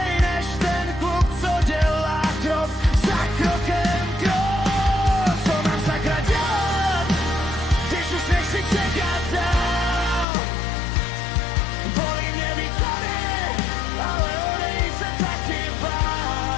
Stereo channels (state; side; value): drops out; right; at 10.2 s